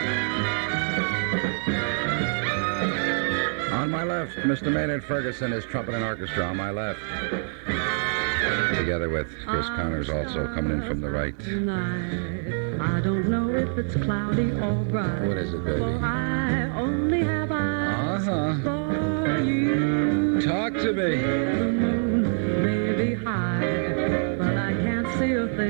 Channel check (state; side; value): silent; left; 61 dB below the other